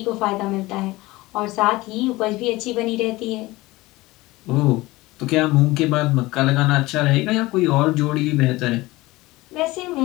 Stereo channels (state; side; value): quieter; right; 20.0 dB